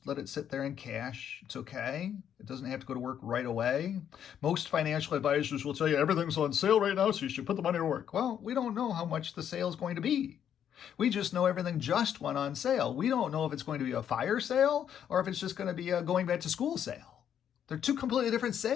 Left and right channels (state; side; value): quieter; right; 9.2 dB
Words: let it sit there in cash. It's okay. It doesn't have to go to work right away. Most financial advisors will tell you everything's on sale right now, so you should put the money to work. Well, we don't know how much the sale is going to be. We just know everything just went on sale. We don't know if it's going to be a fire sale or if it's just going to be a going back to school sale. They're two completely different